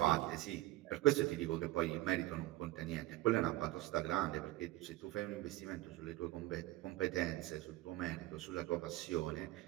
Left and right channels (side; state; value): left; quieter; 17.2 dB